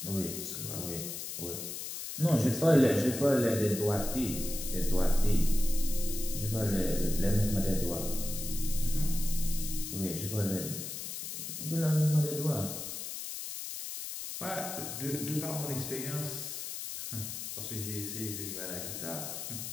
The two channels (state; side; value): noise; left; hiss, 6 dB below the sound